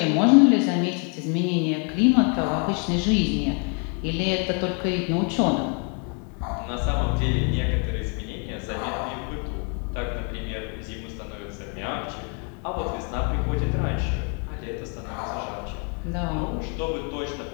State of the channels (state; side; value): quieter; right; 38.3 dB